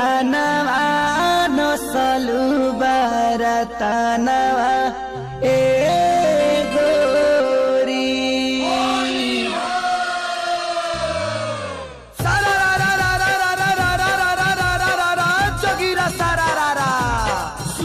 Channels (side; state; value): both; identical; correlation 1.00